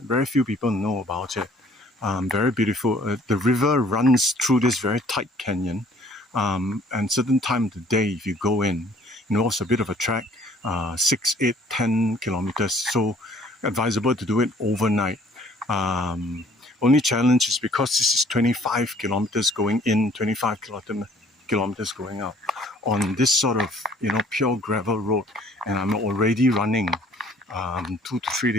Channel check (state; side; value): normal; both; correlation 0.57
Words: Very few people know about it. Very beautiful. The river runs through this very tight canyon, and certain time of the day, if you go in, it's a bit of a trek. 6, 8, 10 kilometers, so advisable to do it overnight. Only challenge is because this is 25 kilometers going in, 25 kilometers going out on this sort of pure gravel road, and I'm already running 2 to 3